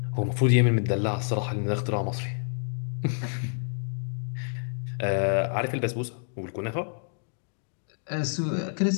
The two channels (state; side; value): silent; right; digital silence